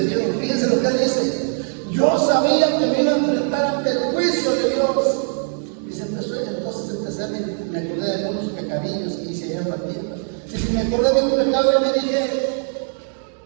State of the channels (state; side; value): silent; left; 58 dB below the other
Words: Dios, fíjense lo que él dice, yo sabía que me iba a enfrentar ante el juicio de Dios. Dice, entonces empecé a me acordé de algunos pecadillos que hice allá en la tierra. Dice, me acordé de un pecado y me dije,